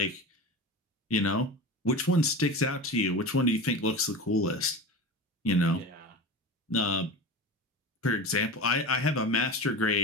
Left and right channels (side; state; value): both; normal; correlation 0.30